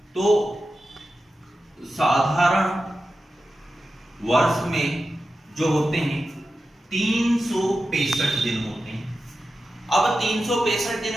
तो साधारण वर्ष में जो होते हैं 365 दिन होते हैं। अब 365 दिन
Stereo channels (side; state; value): both; normal; correlation 0.92